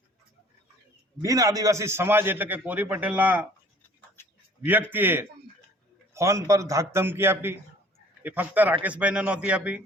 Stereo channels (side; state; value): both; normal; correlation 0.53